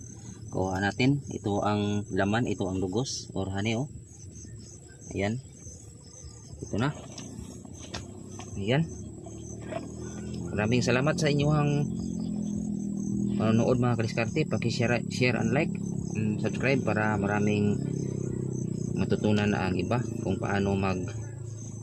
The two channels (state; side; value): identical; both; correlation 1.00